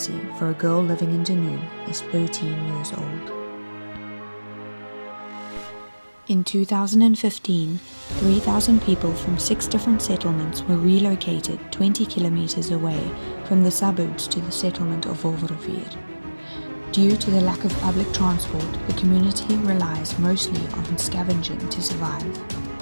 for a girl living in Dunoon is 13 years old. In 2015, 3,000 people from 6 different settlements were relocated 20 kilometers away from the suburbs to the settlement of Wolverrivier. Due to the lack of public transport, the community relies mostly on scavenging to survive.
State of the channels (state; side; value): inverted; both; correlation -1.00